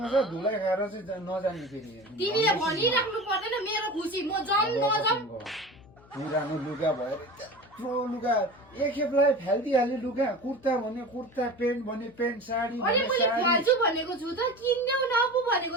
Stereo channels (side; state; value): left; noise; hum, 26 dB below the sound